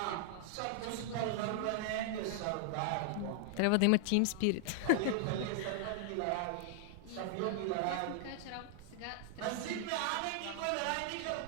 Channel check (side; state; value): both; different; correlation 0.00